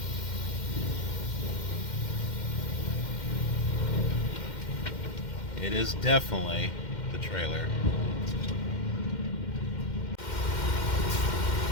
It is definitely the trailer.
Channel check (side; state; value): right; late; 2.1 ms